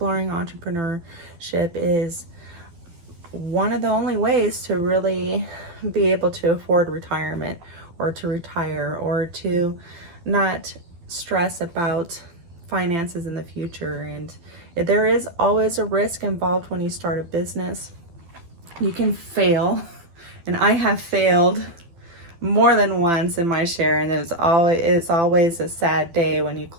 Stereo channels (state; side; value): late; left; 12 ms